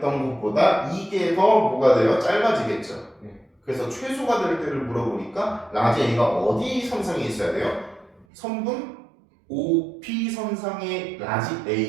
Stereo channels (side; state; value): left; drops out; at 8.2 s